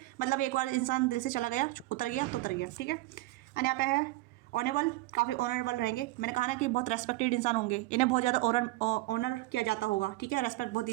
मतलब एक बार इंसान दिल से चला गया, उतर गया तो उतर गया, ठीक है। एंड यहाँ पे है ऑनेबल, काफ़ी ऑनरेबल रहेंगे। मैंने कहा ना कि बहुत रेस्पेक्टेड इंसान होंगे, इन्हें बहुत ज़्यादा ऑनर किया जाता होगा, ठीक है, रेस्पेक्ट बहुत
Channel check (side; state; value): left; quieter; 18.8 dB